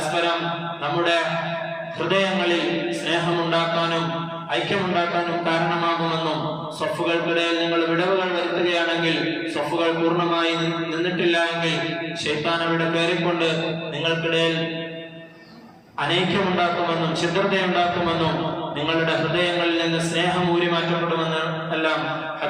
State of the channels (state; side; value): identical; both; correlation 1.00